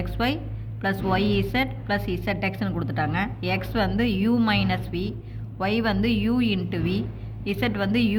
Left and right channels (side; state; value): both; identical; correlation 1.00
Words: XY ப்ளஸ் YZ ப்ளஸ் ZXன்னு கொடுத்துட்டாங்க. X வந்து U மைனஸ் V, Y வந்து U இன்ட்டு V, Z வந்து